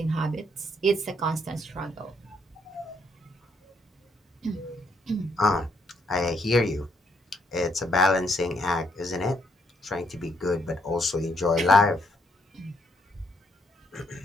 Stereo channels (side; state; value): both; normal; correlation 0.72